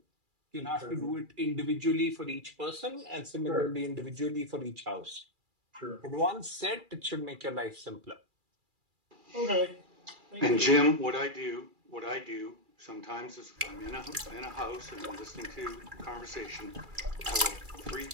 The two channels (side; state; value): left; late; 2.4 ms